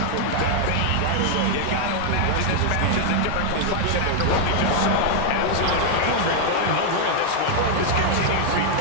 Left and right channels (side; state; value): both; different; correlation 0.00